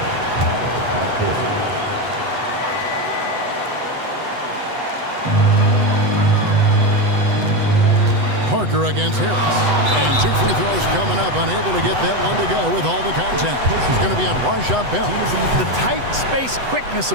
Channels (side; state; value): left; late; 8.0 ms